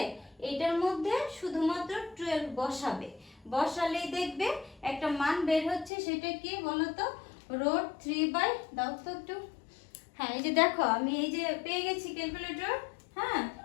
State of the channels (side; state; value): right; drops out; at 5.9 s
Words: এটার মধ্যে শুধুমাত্র 12 বসাবে। বসালেই দেখবে একটা মান বের হচ্ছে। সেটা কি বলো তো? √3 দাও তো একটু। হ্যাঁ এই যে দেখো আমি এই যে পেয়ে গেছি ক্যালকুলেটর। হ্যাঁ